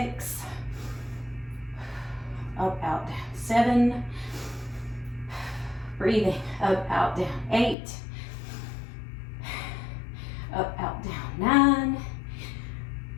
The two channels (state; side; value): drops out; right; at 7.8 s